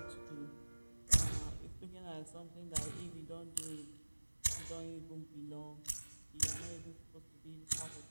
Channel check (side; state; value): both; inverted; correlation -1.00